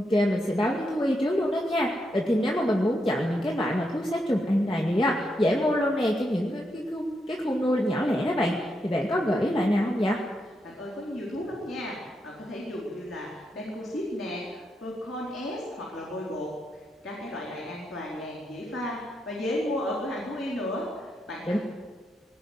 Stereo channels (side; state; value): both; normal; correlation 0.82